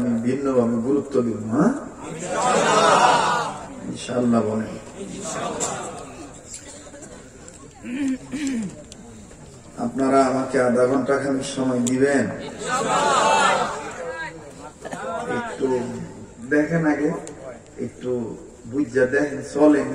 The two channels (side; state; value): both; identical; correlation 1.00